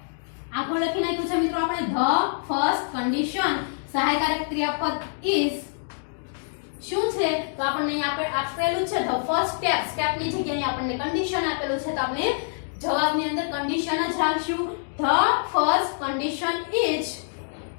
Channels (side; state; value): right; silent; digital silence